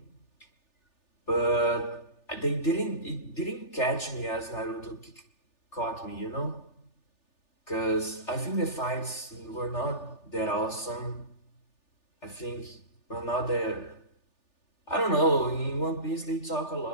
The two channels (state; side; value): late; right; 3.4 ms